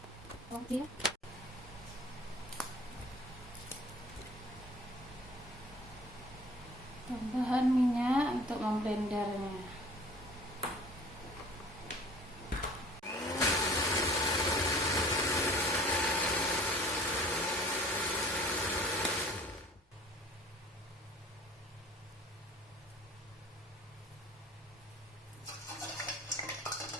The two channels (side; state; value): both; normal; correlation 0.48